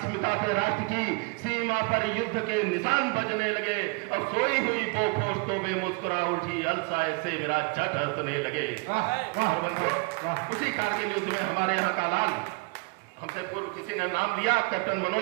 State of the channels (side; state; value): left; quieter; 29.9 dB